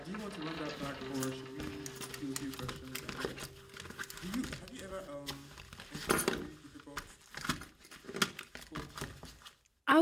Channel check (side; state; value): both; identical; correlation 1.00